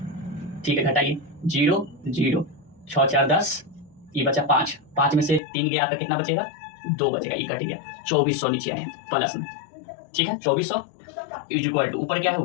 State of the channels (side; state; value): right; drops out; at 5.4 s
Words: ठीक है, घटाइए, 0 0, 6 4 10, ये बचा 5, 5 में से 3 गया, आपका कितना बचेगा, 2 बचेगा, ये कट गया, 2400 नीचे आए प्लस में। ठीक है, 2400 इक्वल टू, ऊपर क्या है,